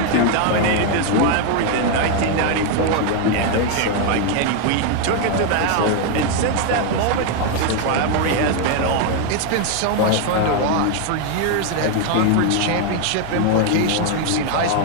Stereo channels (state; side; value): different; both; correlation 0.01